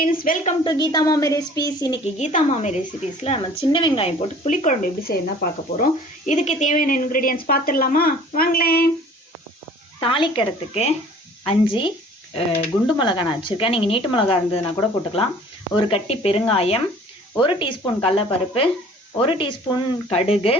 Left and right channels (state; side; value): normal; both; correlation 0.50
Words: welcome to Gita मामी recipes इनकी गीता मामी रेसिपीஸ்ல நம்ம சின்ன வெங்காயம் போட்டு புளிக்குழம்பு எப்படி செய்யணும்னு பார்க்க போறோம். இதுக்கு தேவையான இன்கிரிடியன்ட்ஸ் பார்த்துடலாமா? வாங்களேன். தாளிக்கிறதுக்கு 5 குண்டு மிளகாய் நான் வச்சிருக்கேன். நீங்க நீட்டு மிளகாய் இருந்ததுனா கூட போட்டுக்கலாம். ஒரு கட்டி பெருங்காயம், 1 டீஸ்பூன் கடலைப்பருப்பு, 1 டீஸ்பூன் கடுகு,